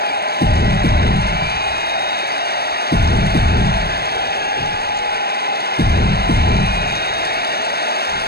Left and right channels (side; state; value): right; late; 0.46 ms